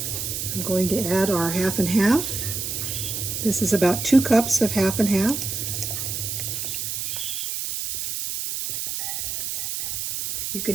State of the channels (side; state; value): right; noise; hiss, 3 dB below the sound